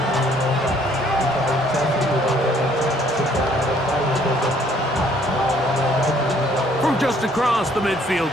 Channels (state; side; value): normal; both; correlation 0.62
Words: From just across the